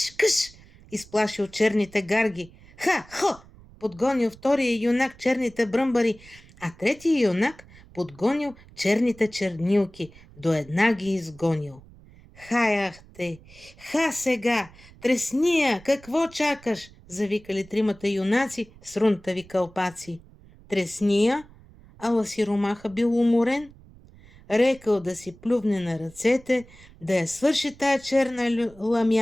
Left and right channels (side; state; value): right; noise; rumble, 23 dB below the sound